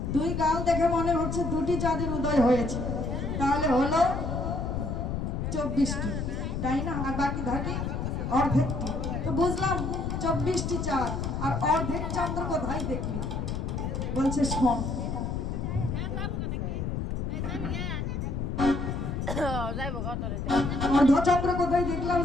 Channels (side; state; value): left; noise; rumble, 2 dB below the sound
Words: 2 গাল দেখে মনে হচ্ছে 2টি চাঁদের উদয় হয়েছে। তাহলে হলো 24টি, তাই না? আর বাকি থাকে অর্ধেকটি। তো বুঝলাম 24টি চাঁদ আর অর্ধেক চন্দ্র কোথায় দেখলি? বলছে শোন। অর্ধচন্দ্র কোথায় দেখলাম